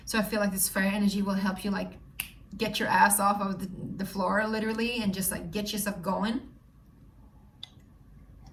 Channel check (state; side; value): identical; both; correlation 1.00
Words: So I feel like this fire energy will help you like get your ass off of the floor literally and just like get yourself going.